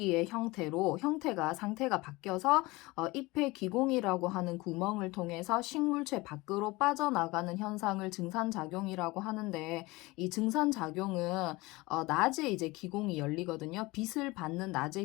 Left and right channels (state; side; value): quieter; right; 22.0 dB